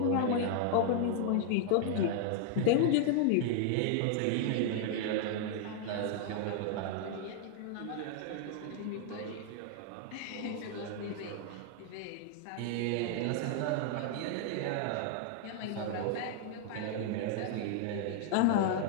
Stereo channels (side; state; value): both; different; correlation 0.00